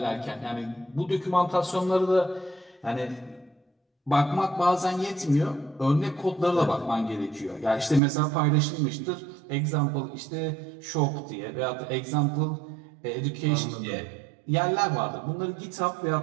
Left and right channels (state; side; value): drops out; left; at 8.0 s